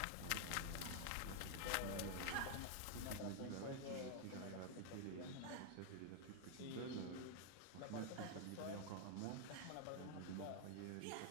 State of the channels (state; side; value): different; both; correlation 0.00